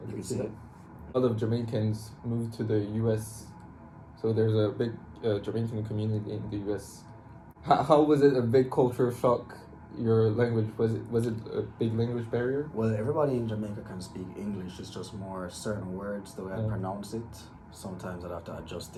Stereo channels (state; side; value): identical; both; correlation 1.00